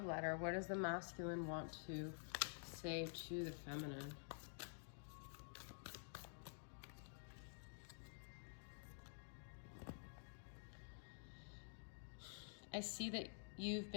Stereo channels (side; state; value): right; silent; digital silence